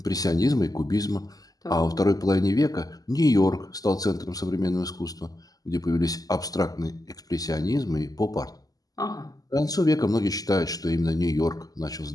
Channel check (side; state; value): right; late; 0.18 ms